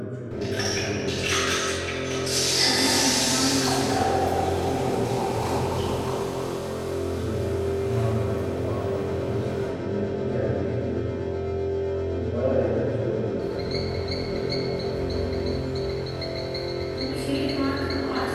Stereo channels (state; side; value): identical; both; correlation 1.00